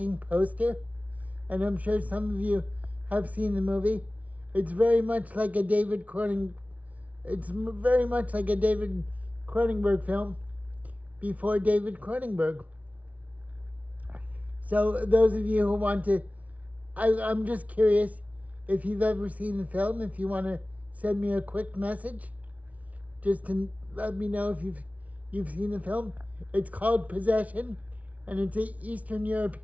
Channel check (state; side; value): late; left; 0.069 ms